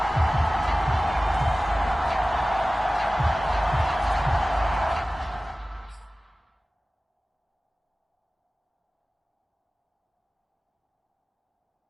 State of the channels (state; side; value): normal; both; correlation 0.97